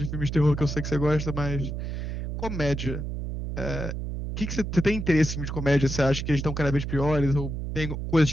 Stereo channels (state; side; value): noise; right; hum, 4 dB below the sound